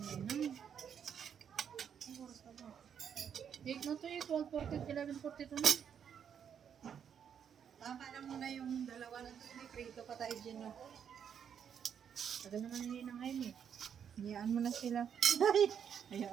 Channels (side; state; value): left; quieter; 8.1 dB